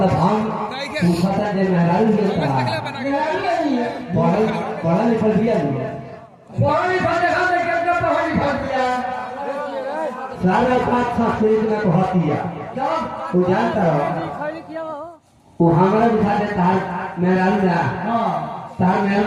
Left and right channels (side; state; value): both; identical; correlation 1.00